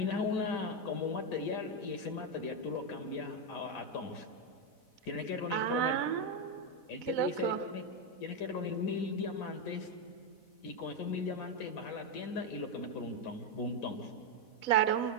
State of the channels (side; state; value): right; late; 4.1 ms